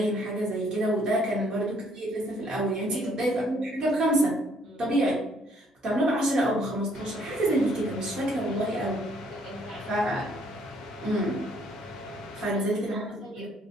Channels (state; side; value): normal; both; correlation 0.65